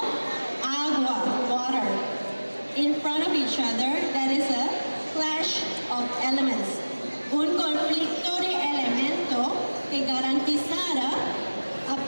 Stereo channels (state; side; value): inverted; both; correlation -1.00